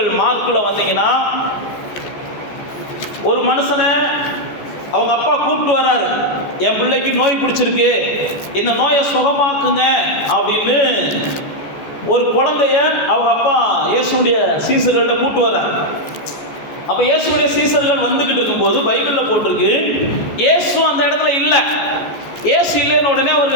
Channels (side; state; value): right; late; 14 ms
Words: மார்க்குல வந்தீங்கன்னா, ஒரு மனுஷனை அவங்க அப்பா கூப்பிட்டு வர்றாரு, என் பிள்ளைக்கு நோய் பிடிச்சிருக்கு, இந்த நோயை சுகமாக்குங்க அப்படின்னு ஒரு குழந்தைய அவங்க அப்பா இயேசுடைய சீசர்கள்ட்ட கூப்பிட்டு வர்றாரு. அப்போ இயேசுடைய சீசர்கள் வந்துக்கிட்டு இருக்கும்போது பைபிளில் போட்டிருக்கு, இயேசு அந்த இடத்துல இல்லை. இயேசு இல்லைன்னு உடனே